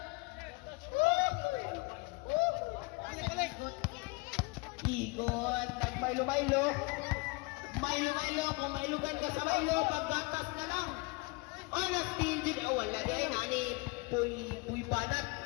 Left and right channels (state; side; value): quieter; right; 27.1 dB